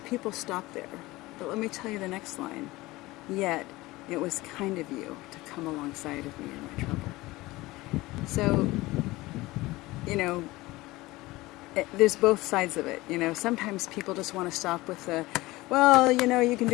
stop there, but let me tell you the next line. Yet, it was kind of you to come alongside of me in my trouble. So, there's both sides of it. Sometimes people just want to stop with the, well, you can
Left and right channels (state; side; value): quieter; right; 19.8 dB